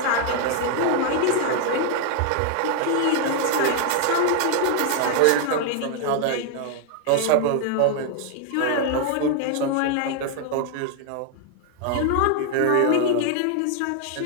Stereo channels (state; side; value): different; both; correlation 0.00